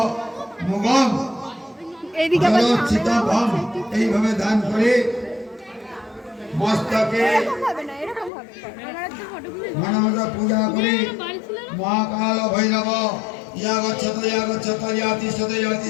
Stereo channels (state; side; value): drops out; right; at 8.3 s